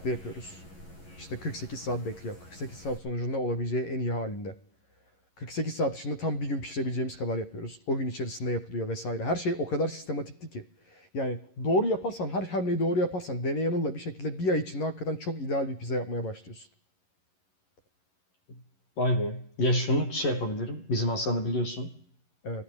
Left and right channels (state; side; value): late; right; 11 ms